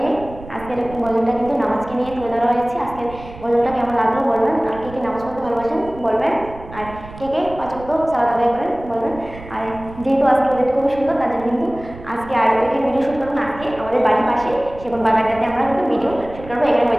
আজকের গজলটা কিন্তু নামাজকে নিয়ে তুলে ধরা হয়েছে। আজকের গজলটা কেমন লাগলো বলবেন, আর কে কে নামাজ পড়তে ভালোবাসেন বলবেন, আর কে কে ৫ ওয়াক্ত সালাত আদায় করেন বলবেন। আর যেহেতু আজকে ওয়েদারটা খুবই সুন্দর, তার জন্য কিন্তু আজকে আর এখানে ভিডিও শ্যুট করবো না। আজকে আমাদের বাড়ির পাশে সেগুন বাগানটাতে আমরা কিন্তু ভিডিও শ্যুট করবো। এখানে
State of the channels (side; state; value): right; noise; rumble, 16 dB below the sound